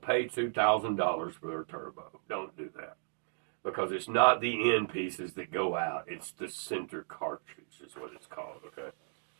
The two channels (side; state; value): left; silent; digital silence